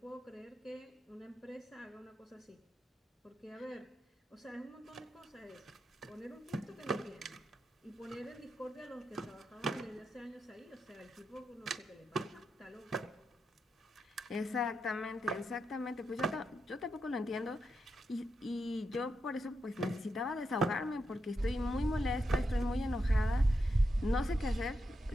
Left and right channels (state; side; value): normal; both; correlation 0.85